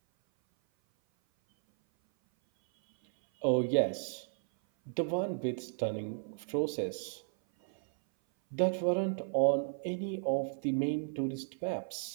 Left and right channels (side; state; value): left; silent; 55 dB below the other